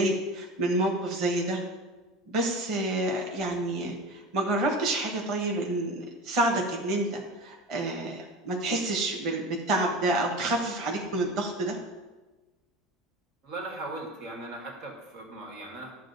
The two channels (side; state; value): both; normal; correlation 0.31